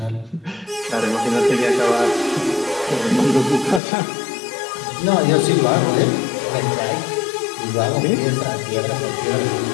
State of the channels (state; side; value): drops out; right; at 3.8 s